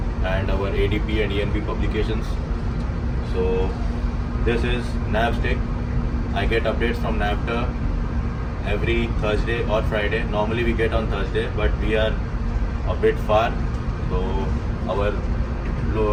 and our ADP and ENB publications. So this is NavStick. I get updates from NAVTA every Thursday or Friday. Normally we get on Thursday, but we are a bit far. So our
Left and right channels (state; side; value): identical; both; correlation 1.00